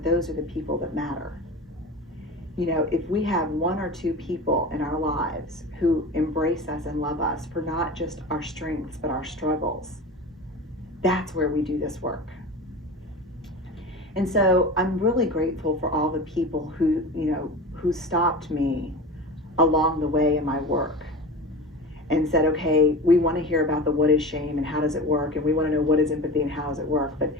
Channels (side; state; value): both; normal; correlation 0.31